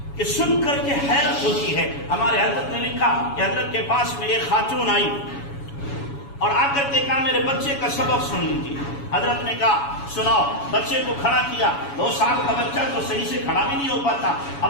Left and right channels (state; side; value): late; right; 7.1 ms